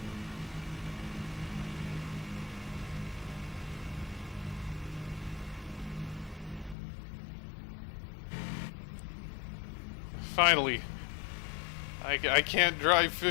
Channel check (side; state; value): right; drops out; at 6.8 s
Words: Finally. I can't drive